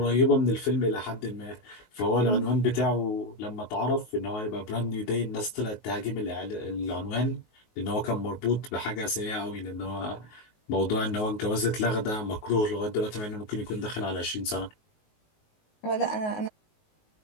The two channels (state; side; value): late; right; 19 ms